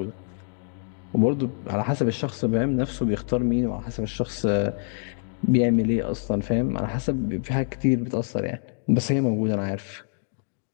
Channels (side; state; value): right; silent; digital silence